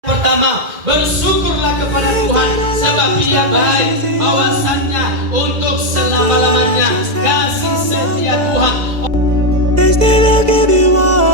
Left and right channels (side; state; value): left; late; 2.0 ms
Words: bersama. Bersyukurlah kepada Tuhan sebab Dia baik, bahwasannya untuk selama-lamanya kasih setia Tuhan. They say they'll give you